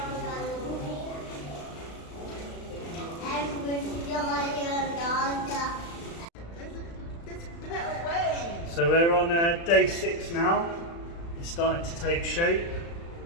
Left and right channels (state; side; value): late; right; 35 ms